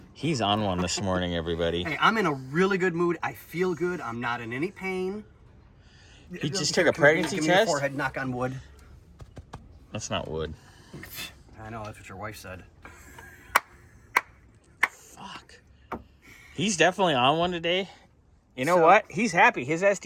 He's on one this morning, everybody. Hey, I'm in a really good mood. I feel good. I'm not in any pain. He just took a pregnancy Give me your test? forehead, knock on wood. That's not wood. I know, that's what your wife said. Fuck. He's definitely on one today. You know what? He's happy. His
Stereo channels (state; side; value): identical; both; correlation 1.00